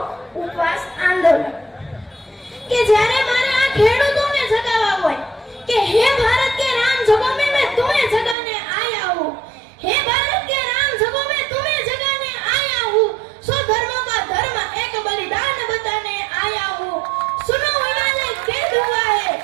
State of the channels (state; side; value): drops out; left; at 8.3 s